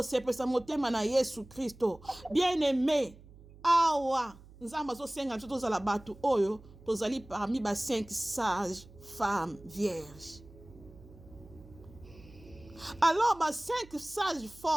motema na Yesu Kristo. Bien-aimé, awa Nzambe azosenga biso tozala bato oyo tozali parmi ba 5 sages femmes vierges. Alors ba 5 sages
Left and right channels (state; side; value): noise; right; hum, 21 dB below the sound